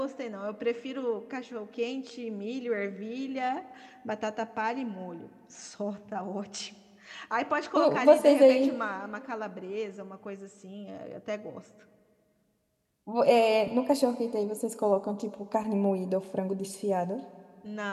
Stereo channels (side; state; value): both; identical; correlation 1.00